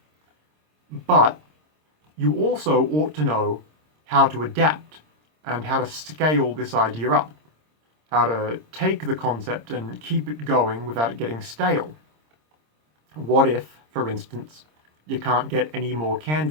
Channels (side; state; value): left; late; 26 ms